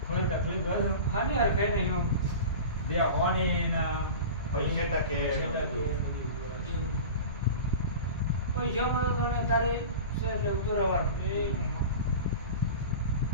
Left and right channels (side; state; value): both; inverted; correlation -0.33